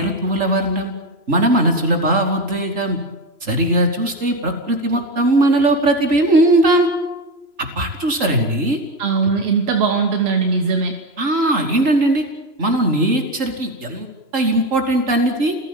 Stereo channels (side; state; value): left; late; 3.8 ms